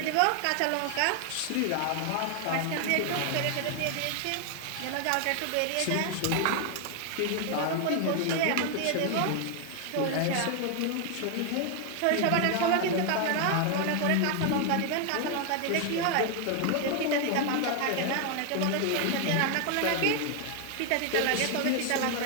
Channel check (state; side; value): different; both; correlation 0.00